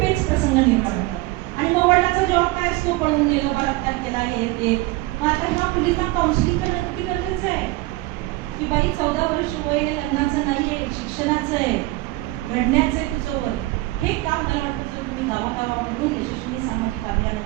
पेच प्रसंग निर्माण होतात. आणि मग वडिलांचा जबाब काय असतो, पळून गेलो, बलात्कार केला, हे ते. मग आता ह्या मुलींना काउन्सिलिंग करणं किती गरजेचं आहे की बाई 14 वर्ष वय हे लग्नाचं नाहीये, शिक्षणाचं आहे, घडण्याचं आहे तुझं वय. हे काम मला वाटतं जर तुम्ही गावागावामधून यशस्वी सामाजिक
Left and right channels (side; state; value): left; quieter; 19.8 dB